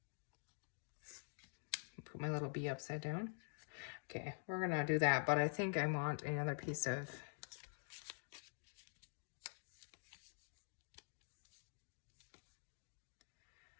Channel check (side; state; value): right; silent; digital silence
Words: Put my little bee upside down. Okay, we're gonna do that, but I think I want another piece of